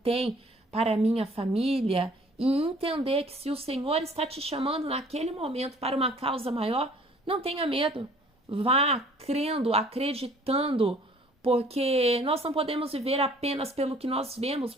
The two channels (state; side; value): normal; both; correlation 0.54